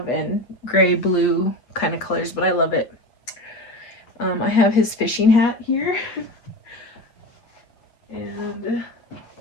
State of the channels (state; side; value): late; right; 8.3 ms